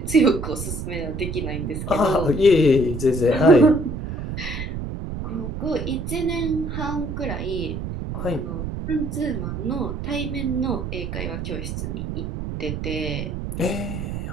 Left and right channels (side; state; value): right; noise; rumble, 5 dB below the sound